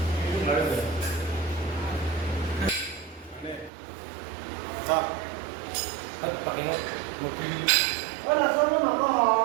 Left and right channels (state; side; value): drops out; left; at 3.7 s